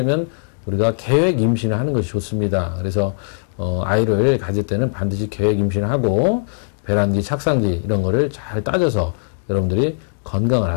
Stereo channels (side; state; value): right; silent; digital silence